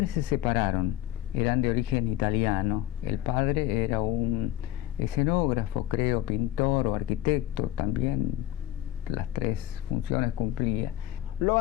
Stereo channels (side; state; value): right; quieter; 13.9 dB